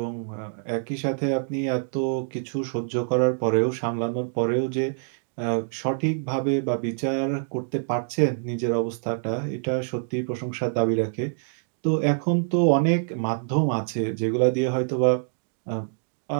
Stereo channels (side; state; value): left; silent; digital silence